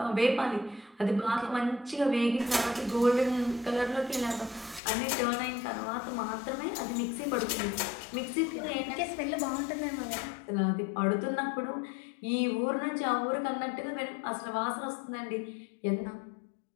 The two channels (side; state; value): right; drops out; at 4.8 s